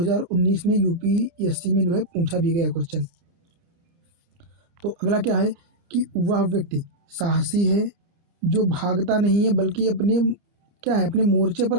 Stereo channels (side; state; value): left; late; 30 ms